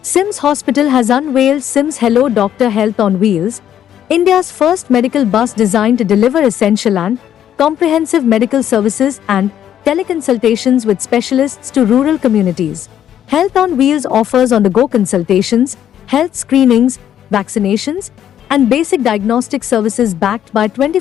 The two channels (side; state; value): right; quieter; 10.3 dB